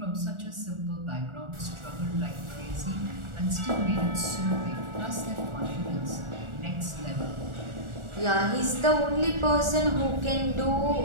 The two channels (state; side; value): late; left; 1.4 ms